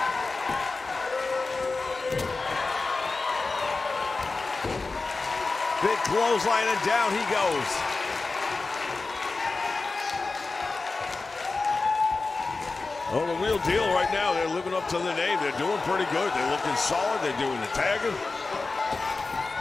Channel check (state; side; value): quieter; right; 3.8 dB